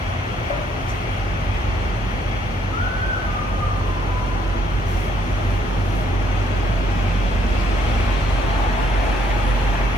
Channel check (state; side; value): normal; both; correlation 0.68